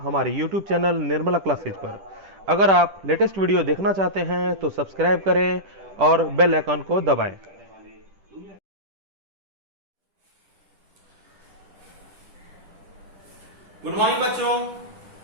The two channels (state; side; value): late; left; 10 ms